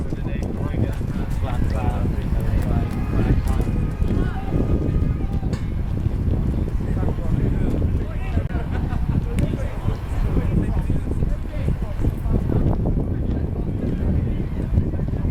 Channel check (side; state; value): both; identical; correlation 1.00